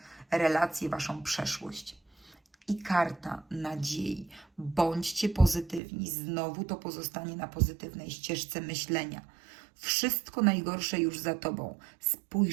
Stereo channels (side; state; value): left; drops out; at 5.8 s